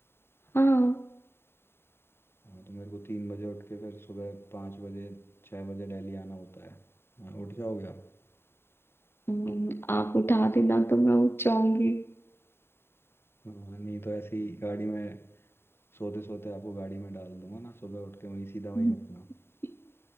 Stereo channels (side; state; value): right; late; 0.11 ms